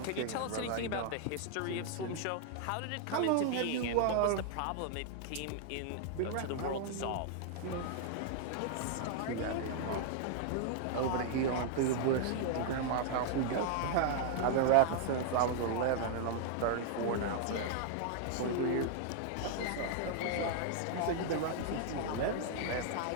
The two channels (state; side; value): different; both; correlation 0.00